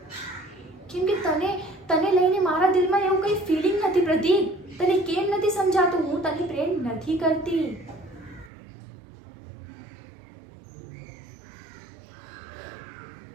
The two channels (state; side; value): drops out; left; at 8.5 s